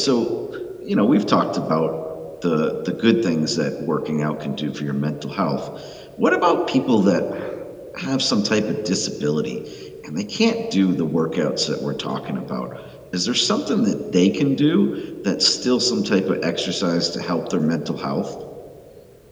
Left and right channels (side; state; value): both; identical; correlation 1.00